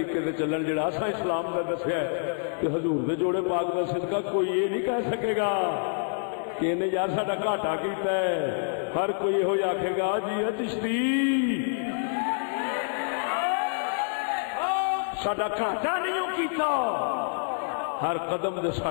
دے چلن، جڑا اساں اسلام دا دسیا ہے کہ حضور دے جوڑے پاک دا صدقہ کوئی یہ نہیں کہہ سکے گا کہ انہیں یار ساڈا گھاٹا کیتا ہے، ہر کوئی یہ آکھے گا جی چشتی ساڈا گھاٹا نہیں کیتا، ہر قدم دے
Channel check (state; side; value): silent; right; digital silence